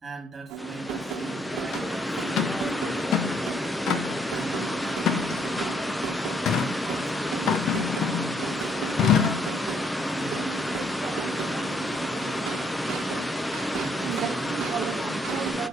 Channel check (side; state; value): both; normal; correlation 0.69